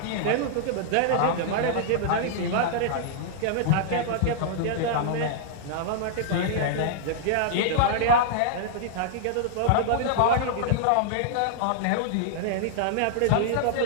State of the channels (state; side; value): different; both; correlation -0.01